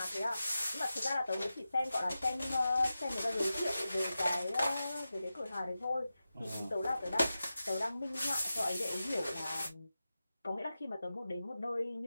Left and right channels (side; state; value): both; inverted; correlation -0.93